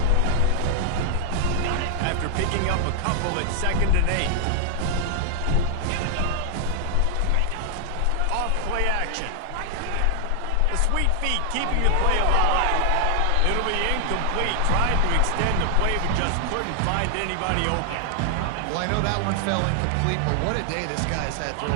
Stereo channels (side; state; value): both; different; correlation 0.00